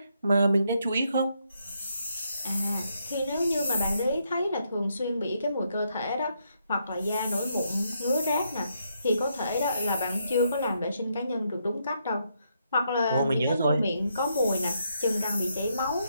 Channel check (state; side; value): inverted; both; correlation -0.77